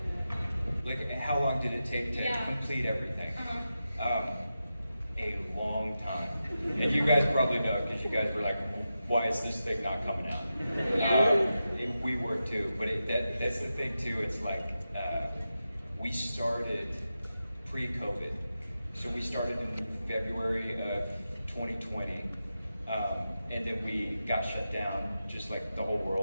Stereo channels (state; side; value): inverted; both; correlation -0.90